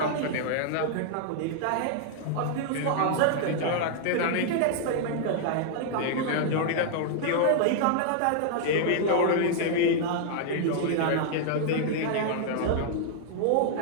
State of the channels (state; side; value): different; both; correlation -0.01